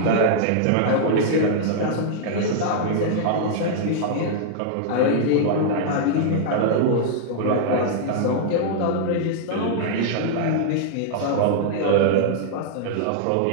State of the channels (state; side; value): different; both; correlation -0.01